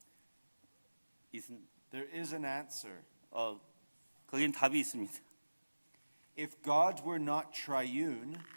There is an answer. 거긴 답이 있습니다. If God were not triune,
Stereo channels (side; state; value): both; inverted; correlation -1.00